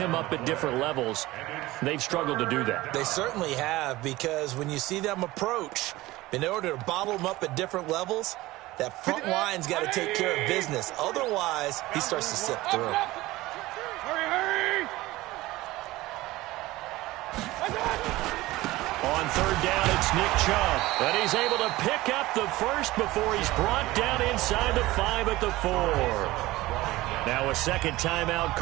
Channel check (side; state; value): left; quieter; 18.5 dB